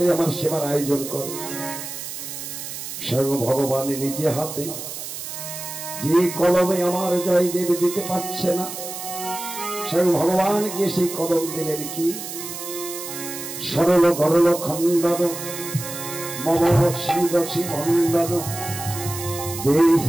আমার সেবার আয়োজন করো। স্বয়ং ভগবান নিজে হাতে যে কলমে আমার জয়দেব দিতে পারছে না, স্বয়ং ভগবানকে সেই কলম দিলেন কি? সরল গরল খণ্ডন মম শ্রীরসি মণ্ডন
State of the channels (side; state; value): right; noise; hiss, 8 dB below the sound